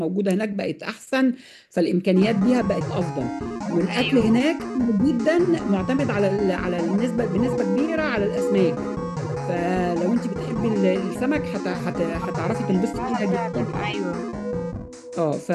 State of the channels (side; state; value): both; identical; correlation 1.00